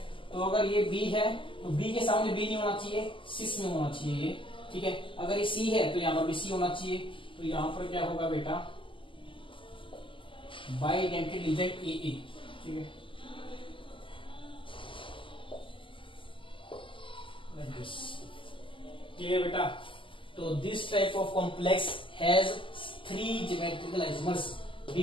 तो अगर ये B है तो B के सामने B नहीं होना चाहिए, सिस में होना चाहिए ये, ठीक है। अगर ये C है तो यहाँ पर भी C होना चाहिए। तो यहाँ पर क्या होगा बेटा, बाइडेंटेड लीजेंड AA, ठीक है। क्लियर बेटा? तो this type of complex has 3 geometrical isomers,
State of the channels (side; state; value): right; late; 0.25 ms